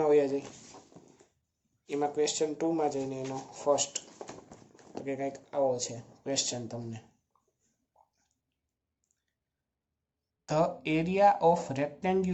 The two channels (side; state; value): both; identical; correlation 1.00